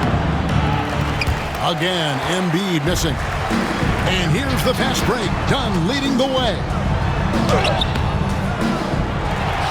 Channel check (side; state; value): both; identical; correlation 1.00